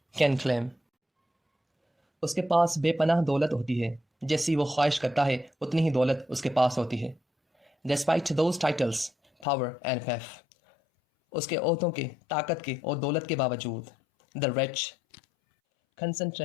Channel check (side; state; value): right; drops out; at 9.5 s